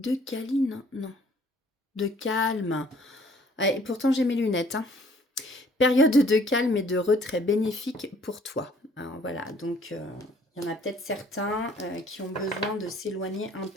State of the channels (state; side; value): normal; both; correlation 0.58